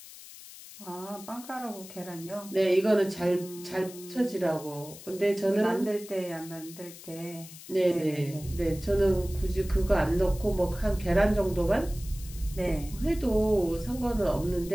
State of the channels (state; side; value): noise; left; hiss, 16 dB below the sound